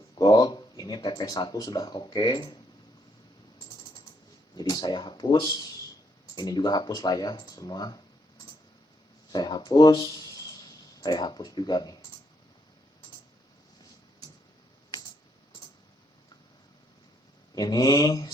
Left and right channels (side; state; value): both; normal; correlation 0.74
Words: gold. Ini TP1 sudah oke. Jadi saya hapus. Ini juga hapus lah ya semua. saya hapus juga nih. Ini